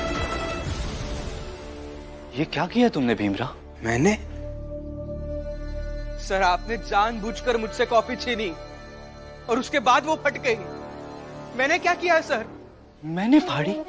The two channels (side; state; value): both; identical; correlation 1.00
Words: ये क्या किया तुमने भीमराव? मैंने? सर आपने जानबूझकर मुझसे कॉपी छीनी और उसके बाद वो फट गई। मैंने क्या किया है सर? मैंने फाड़ी?